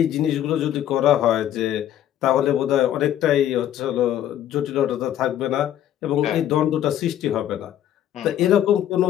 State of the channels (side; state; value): right; quieter; 11.4 dB